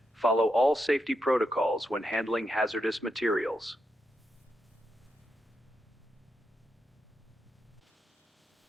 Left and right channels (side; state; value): both; normal; correlation 0.84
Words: follow all safety protocols when handling hazardous materials.